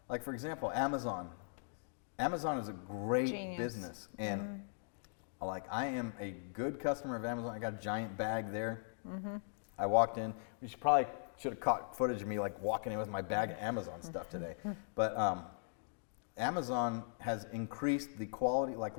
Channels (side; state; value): right; silent; digital silence